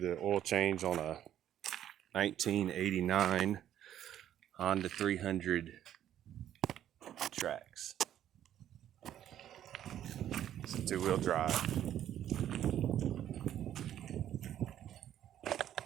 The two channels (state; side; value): quieter; left; 11.1 dB